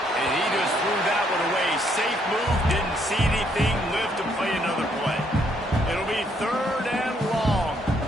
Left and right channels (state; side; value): normal; both; correlation 0.70